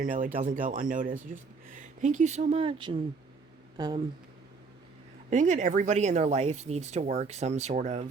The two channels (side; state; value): left; quieter; 4.6 dB